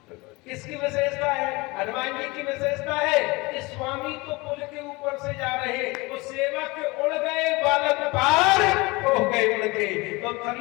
किसकी विशेषता है? हनुमान जी की विशेषता है कि स्वामी तो पुल के ऊपर से जा रहे, वो सेवक उड़ गए, बालक पार हो गए उड़ के। तो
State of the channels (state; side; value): quieter; right; 24.2 dB